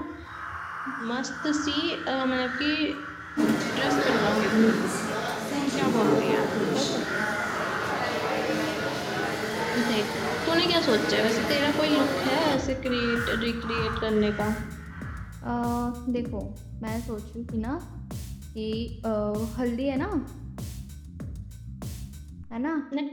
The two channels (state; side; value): identical; both; correlation 1.00